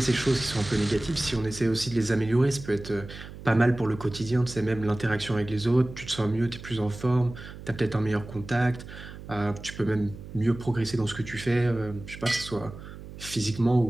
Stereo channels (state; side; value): noise; right; hum, 14 dB below the sound